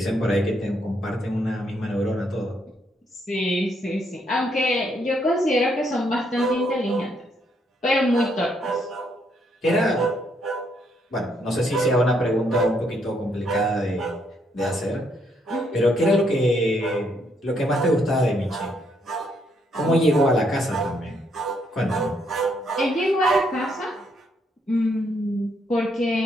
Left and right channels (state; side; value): normal; both; correlation 0.73